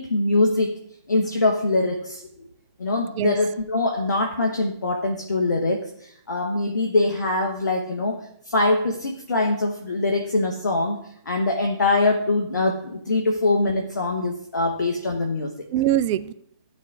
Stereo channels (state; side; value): inverted; both; correlation -0.64